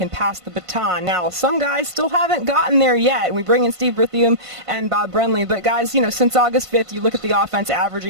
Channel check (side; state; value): left; late; 1.5 ms